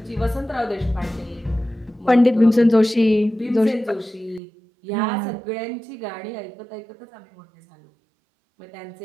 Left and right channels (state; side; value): drops out; left; at 4.4 s